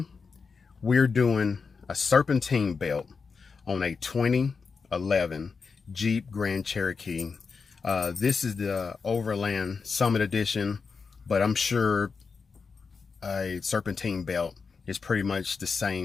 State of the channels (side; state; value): right; quieter; 5.1 dB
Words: we're doing a serpentine belt on a 2011 Jeep Grand Cherokee. This is the Overland Summit Edition, but I'm sure a serpentine belt is pretty much the